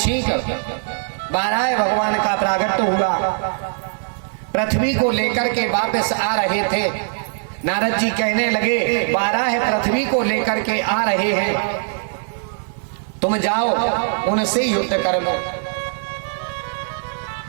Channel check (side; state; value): left; silent; digital silence